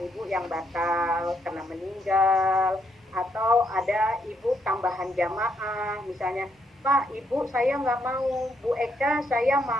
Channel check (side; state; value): both; normal; correlation 0.75